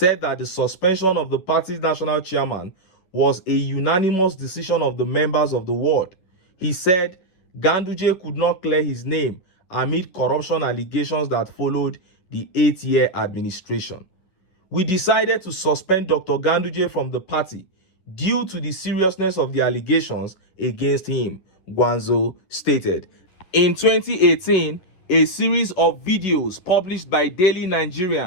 that the suspension of the party's national chairman was a unanimous decision of the members of the ward. He said Ganduje could not clear his name amid corruption allegations that followed the 8-year administration. We decided to suspend Dr. Ganduje from the party due to the seriousness of the allegations against him, Gwanzo stated. In 2018, a series of videos published by Daily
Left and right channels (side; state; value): right; late; 11 ms